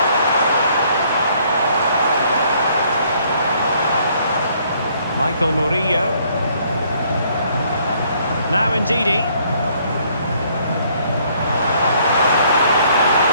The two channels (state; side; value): inverted; both; correlation -0.65